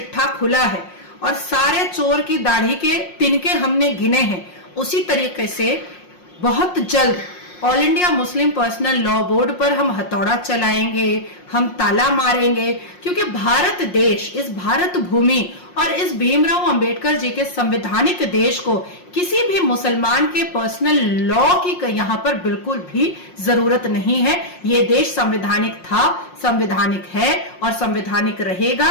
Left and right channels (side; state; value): right; late; 5.6 ms